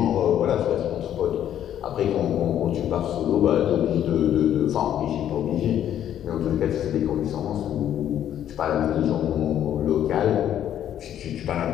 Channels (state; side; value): quieter; right; 10.6 dB